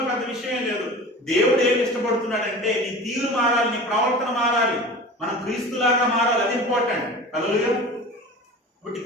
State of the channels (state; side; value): normal; both; correlation 0.37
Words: పెద్ద విషయం లేదు. దేవుడు ఏమి ఇష్టపడుతున్నాడంటే నీ తీరు మారాలి, నీ ప్రవర్తన మారాలి, మనం క్రీస్తులాగా మారాలి. అది ఇంపార్టెంట్. హల్లెలూయా. కాబట్టి